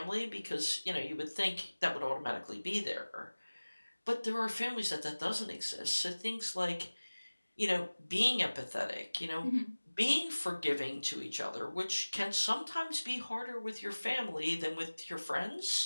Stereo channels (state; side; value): inverted; both; correlation -1.00